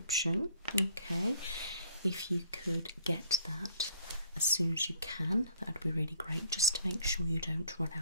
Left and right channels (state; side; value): inverted; both; correlation -0.57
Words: Okay. If you could get that as soon as you can, that would be really great, just to make sure you don't run